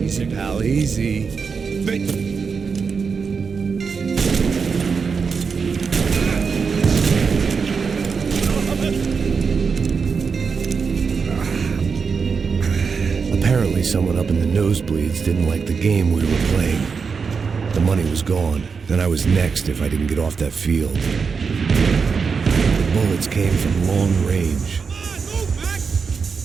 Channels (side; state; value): left; quieter; 5.5 dB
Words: Easy, pal, easy. Vem! Apparently someone up in the nosebleeds didn't like the game we were playing. The money was gone. Then I was next if I didn't get off that field. The bullets came from long range.